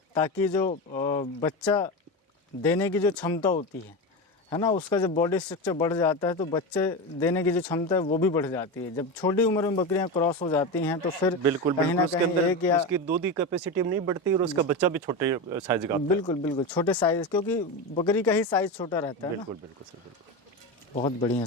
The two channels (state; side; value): normal; both; correlation 0.19